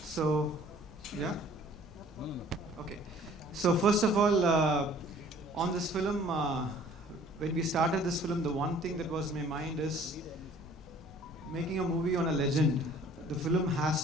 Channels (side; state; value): both; normal; correlation 0.53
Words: yeah? Okay. So first of all, on this film, when we started this film, the one thing that was in my mind is making a movie on a legend. The film has